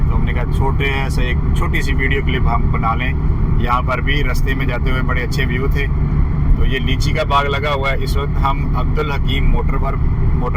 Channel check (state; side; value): identical; both; correlation 1.00